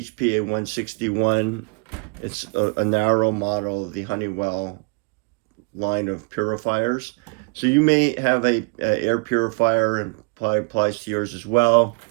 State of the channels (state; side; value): quieter; left; 32.8 dB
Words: 161. It's a narrow model of the Honeywell line of purifiers. So you may have a air purifier, and probably applies to yours as well,